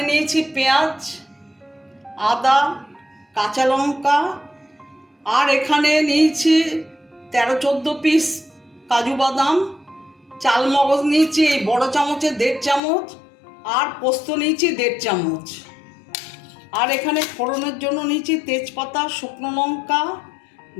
নিয়েছি পেঁয়াজ, আদা, কাঁচা লঙ্কা, আর এখানে নিয়েছি 13-14 পিস কাজু বাদাম, চাল মগজ নিয়েছি এই বড় চামচে 1.5 চামচ, আর পোস্ত নিয়েছি 1.5 চামচ। আর এখানে ফোড়নের জন্য নিয়েছি তেজপাতা, শুকনো লঙ্কা,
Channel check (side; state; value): right; drops out; at 12.8 s